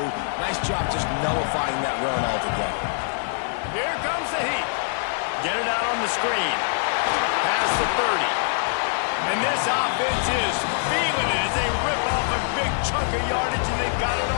Nice job just nullifying that run altogether. Here comes the heat. Get it out on the screen. Past the 30. And this offense is feeling it as they rip off a big chunk of yardage, and they've got it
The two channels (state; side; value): silent; right; digital silence